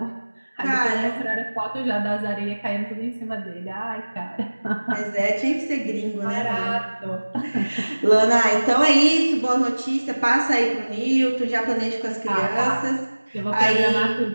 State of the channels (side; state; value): both; inverted; correlation -1.00